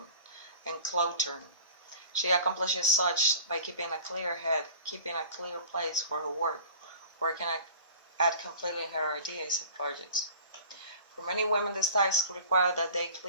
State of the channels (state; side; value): inverted; both; correlation -0.43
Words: enclothed. She accomplishes such by keeping a clear head, keeping a clear place for her work, working at completing her ideas and projects. For many women, this task requires that they